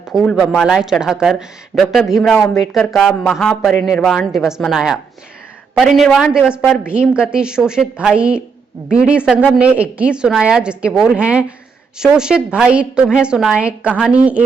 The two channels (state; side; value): quieter; left; 5.5 dB